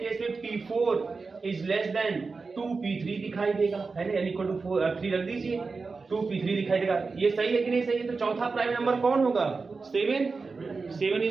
में p4 is less then 2p3 दिखाई देगा, है ना, n इक्वल टू 3 रख दीजिए, 2p3 दिखाई देगा। ये सही है कि नहीं सही है, तो चौथा प्राइम नंबर कौन होगा, 7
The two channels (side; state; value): left; quieter; 4.3 dB